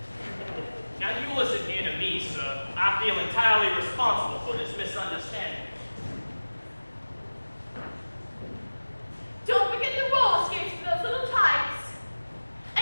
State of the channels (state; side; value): inverted; both; correlation -1.00